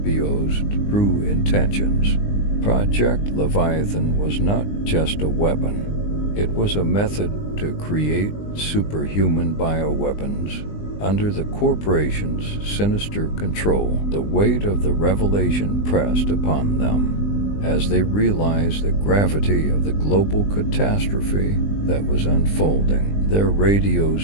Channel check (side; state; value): right; late; 20 ms